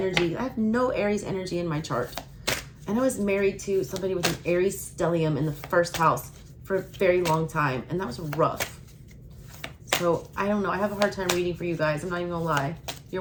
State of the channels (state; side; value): identical; both; correlation 1.00